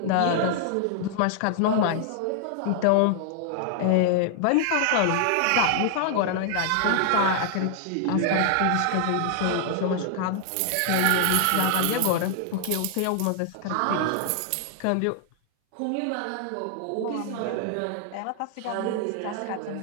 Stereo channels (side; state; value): both; different; correlation 0.00